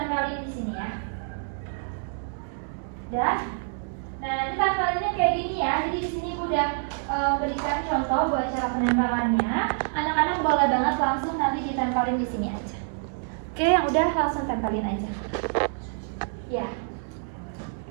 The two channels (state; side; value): silent; left; digital silence